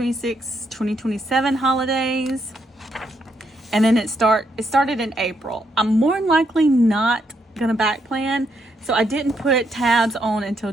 2027 holidays. And then it started in April. I'm more than likely not gonna back plan, so I didn't put tabs on until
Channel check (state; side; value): normal; both; correlation 0.76